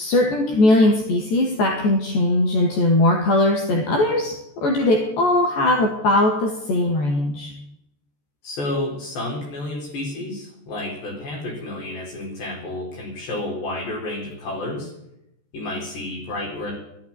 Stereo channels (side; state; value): right; late; 14 ms